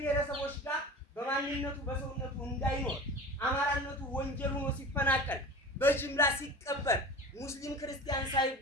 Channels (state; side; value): normal; both; correlation 0.35